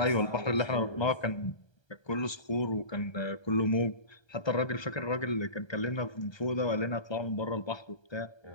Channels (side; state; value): right; late; 1.3 ms